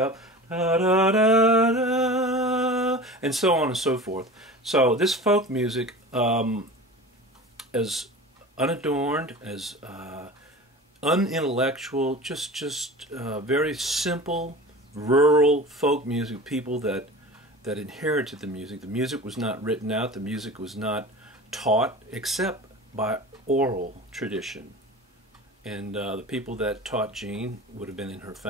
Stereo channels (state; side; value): normal; both; correlation 0.35